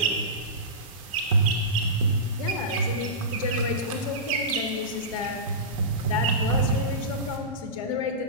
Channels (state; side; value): normal; both; correlation -0.19